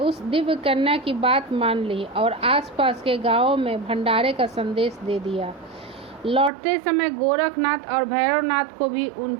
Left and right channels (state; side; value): drops out; left; at 6.5 s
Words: दिव्य कन्या की बात मान ली और आसपास के गांवों में भंडारे का संदेश दे दिया। लौटते समय गोरखनाथ और भैरवनाथ को भी